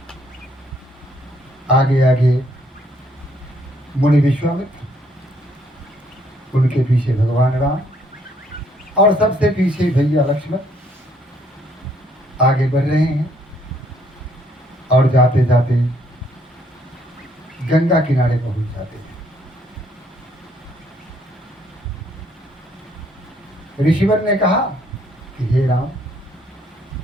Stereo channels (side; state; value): both; normal; correlation 0.67